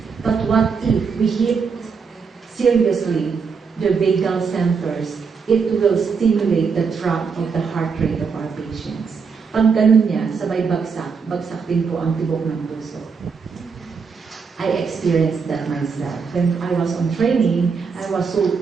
But what if we hit seriously the vagal centers? It will stimulate the drop of the heart rate of our patients. Pag ganun niya, sabay bagsak, bagsak din po ang tibok ng puso. I experienced that myself. When I was on training, I was so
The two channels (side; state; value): left; quieter; 5.5 dB